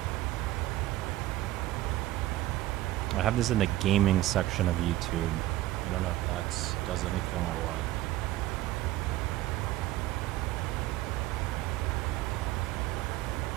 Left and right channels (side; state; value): left; quieter; 15.8 dB